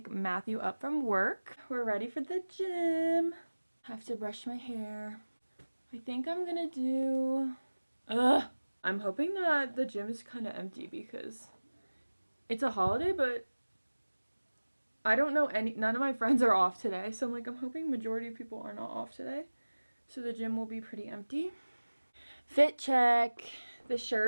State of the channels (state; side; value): inverted; both; correlation -1.00